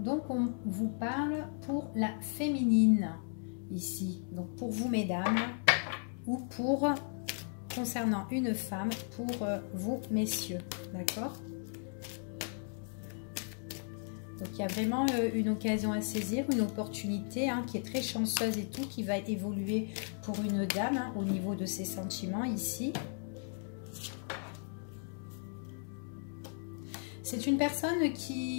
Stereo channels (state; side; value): silent; right; 54 dB below the other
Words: on vous parle pour la féminine. Ici, donc pour vous mesdames ou pour concernant une femme pour vous messieurs, d'accord? Donc il y a vraiment une occasion à saisir, une opportunité qui est très chanceuse et tout, qui va évoluer pour une dame au niveau de ses sentiments ici. C'est une personne